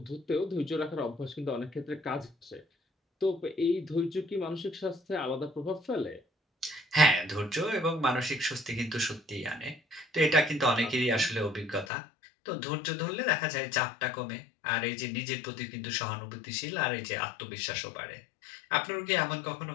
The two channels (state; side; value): drops out; right; at 11.9 s